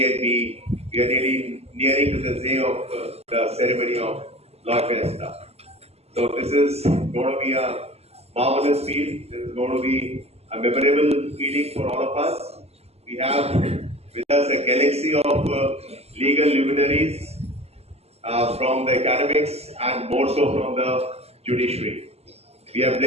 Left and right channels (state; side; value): late; left; 0.30 ms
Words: and B. We are nearing to the day of the ceremony of Loi Fiesta. So this is going to be a marvelous feel. This is going to be a memorable feeling for all of us. We have with us a galaxy of legal luminaries from the academics and more so from the judiciary. We are